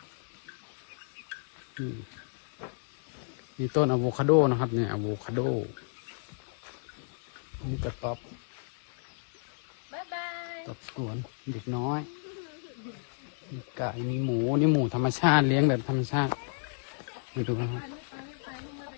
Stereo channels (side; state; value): right; silent; 56 dB below the other